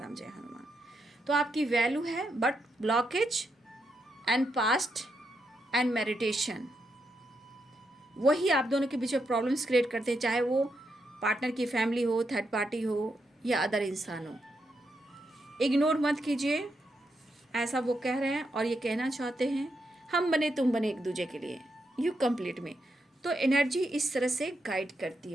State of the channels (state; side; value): normal; both; correlation 0.82